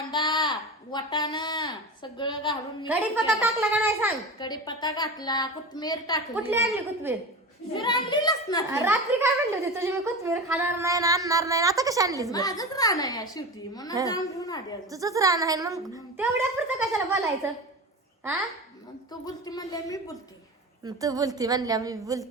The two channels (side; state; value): both; normal; correlation 0.28